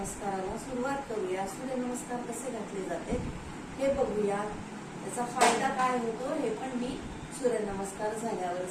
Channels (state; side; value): identical; both; correlation 1.00